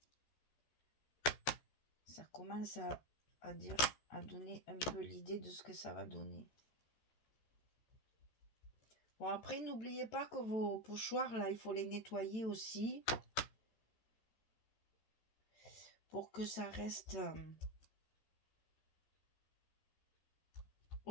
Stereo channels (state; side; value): late; right; 14 ms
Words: Ça commence à donner un peu l'idée de ce que ça va donner. Bon, après, n'oubliez pas que vos pochoirs, là, il faut les nettoyer aussi. Pour que ça reste